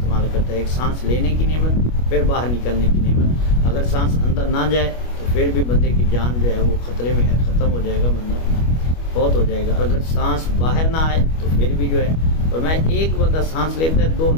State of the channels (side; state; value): right; late; 25 ms